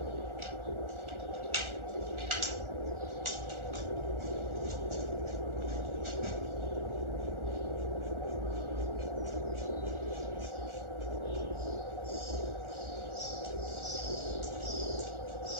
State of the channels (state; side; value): late; left; 1.4 ms